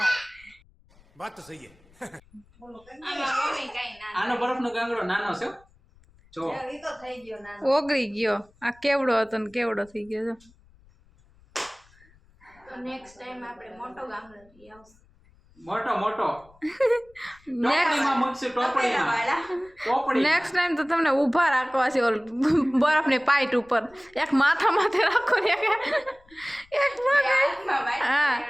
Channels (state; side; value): noise; left; rumble, 29 dB below the sound